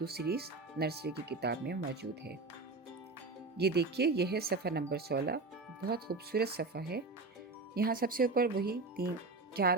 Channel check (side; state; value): left; quieter; 3.6 dB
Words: series nursery की किताब में मौजूद है। ये देखिए, यह है सफ़र नंबर 16। बहुत खूबसूरत सफ़ा है। यहाँ सबसे ऊपर वही